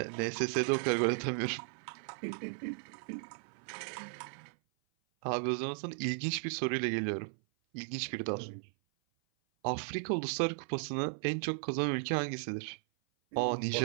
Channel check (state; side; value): silent; left; 54 dB below the other